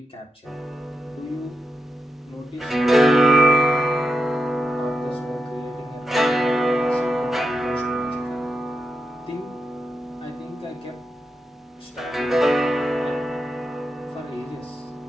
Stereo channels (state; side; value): normal; both; correlation 0.86